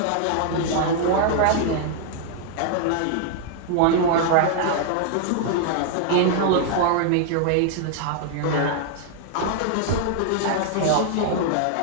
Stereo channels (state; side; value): different; both; correlation 0.00